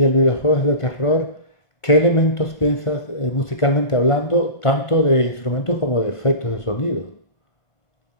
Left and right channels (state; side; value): late; right; 1.5 ms